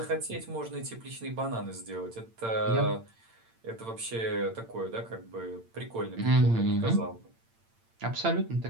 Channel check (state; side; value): late; left; 8.8 ms